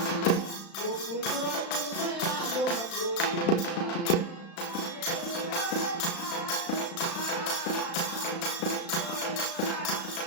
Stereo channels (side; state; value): right; late; 35 ms